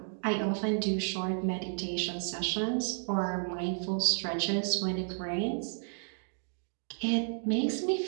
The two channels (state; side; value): silent; left; 56 dB below the other